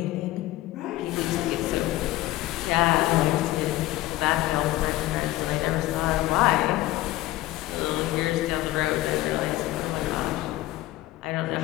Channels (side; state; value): right; quieter; 16.7 dB